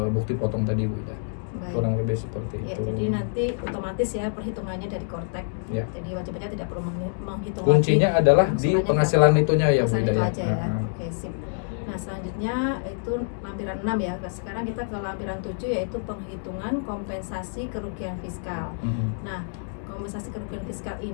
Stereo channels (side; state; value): right; silent; digital silence